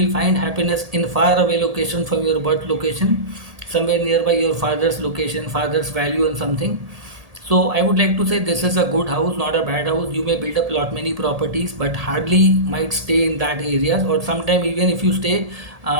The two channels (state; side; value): late; left; 1.7 ms